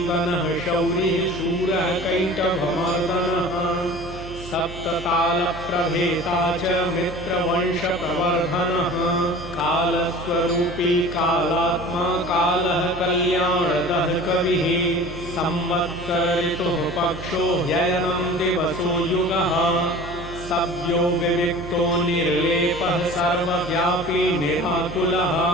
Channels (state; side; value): noise; right; hum, 13 dB below the sound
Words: शौरी शूरः कैटभमर्दनः सप्ततालप्रभेता च मित्रवंशप्रवर्धनः कालस्वरूपी कालात्मा कालः कल्याणदः कविः संवत्सरितुः पक्षो ह्ययनं दिवसो युगः सव्यो विविक्तो निर्लेपः सर्वव्यापी निराकुलः